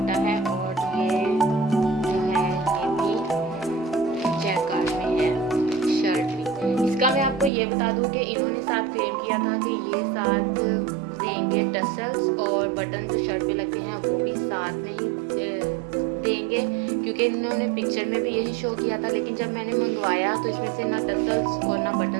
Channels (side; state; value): left; drops out; at 7.5 s